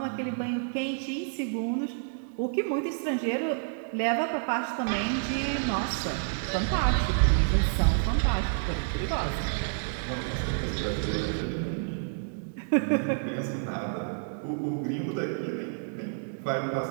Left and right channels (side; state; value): left; silent; digital silence